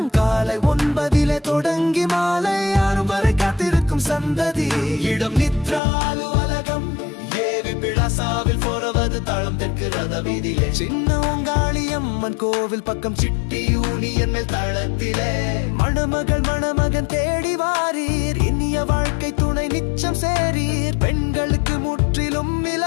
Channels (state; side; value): drops out; right; at 5.8 s